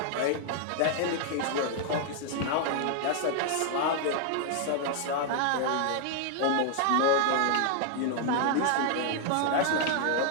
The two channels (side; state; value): both; different; correlation 0.00